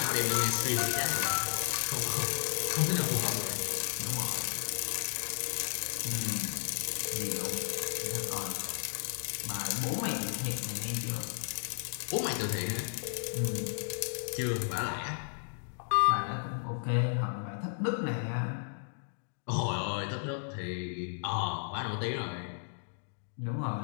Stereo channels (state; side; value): silent; right; digital silence